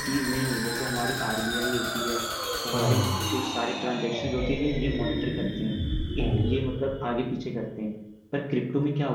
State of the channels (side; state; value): both; identical; correlation 1.00